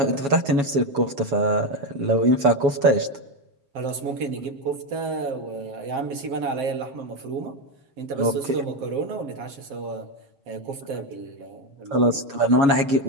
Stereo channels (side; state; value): left; late; 7.2 ms